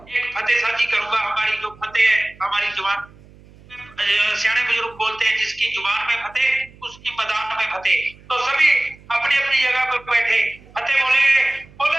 एक फतेह साझी करूंगा। हमारी जो फतेह है, हमारी जुबान, सियाने बुजुर्ग बोलते हैं, जिसकी जुबान में फतेह उसकी मैदान में फतेह। तो सभी अपनी अपनी जगह पर बैठे फतेह बोलेंगे,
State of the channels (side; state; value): right; noise; hum, 24 dB below the sound